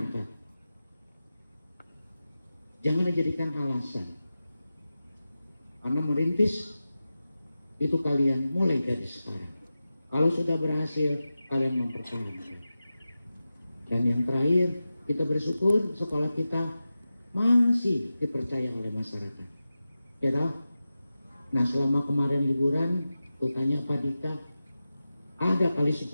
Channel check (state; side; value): inverted; both; correlation -0.94